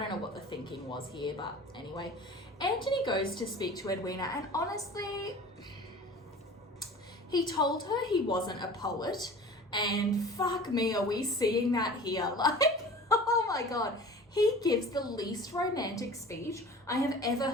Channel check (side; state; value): both; normal; correlation 0.41